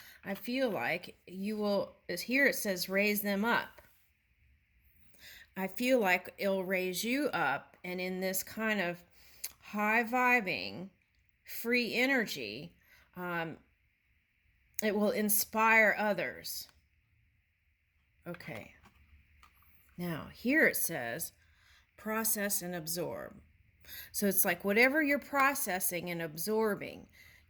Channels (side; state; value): both; identical; correlation 1.00